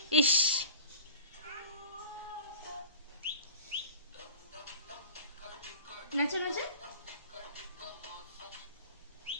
ইস। নাচো নাচো।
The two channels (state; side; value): inverted; both; correlation -0.41